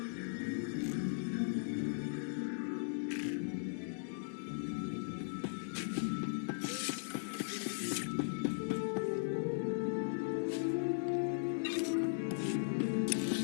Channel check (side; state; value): right; silent; digital silence